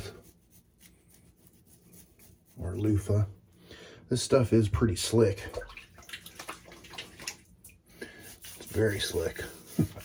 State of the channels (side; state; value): both; identical; correlation 1.00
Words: or loofah. This stuff is pretty slick. It's very slick.